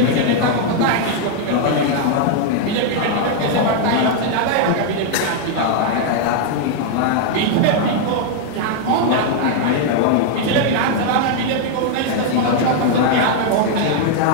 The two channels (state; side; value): different; both; correlation 0.00